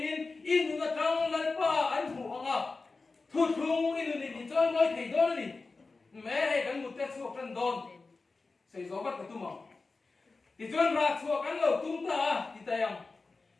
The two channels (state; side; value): quieter; right; 3.9 dB